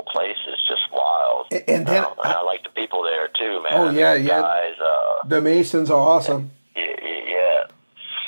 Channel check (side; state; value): both; inverted; correlation -1.00